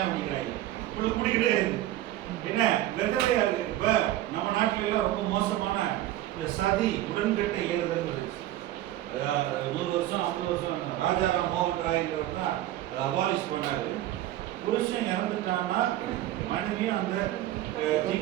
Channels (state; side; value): quieter; left; 14.2 dB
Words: பண்ணிக்கிறாங்க, முடிக்கிட்டே இருக்கு. என்ன விதவையா இருக்கு. இப்ப நம்ம நாட்டில எல்லாம் ரொம்ப மோசமான இந்த சதி உடன்கட்டை ஏறுதல் 100 வருஷம் 50 வருஷம் ராஜாராம் மோகன் ராய்ங்கிறவர் தான் அதை அபாலிஷ் பண்ணாரு. புருஷன் இறந்துட்டான்னா மனைவியும் அந்த